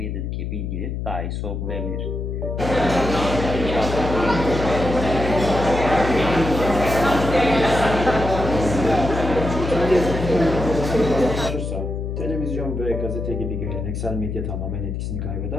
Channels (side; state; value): left; noise; hum, 4 dB below the sound